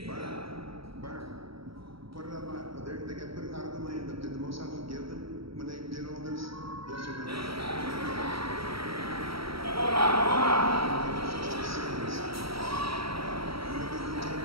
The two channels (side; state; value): left; late; 0.75 ms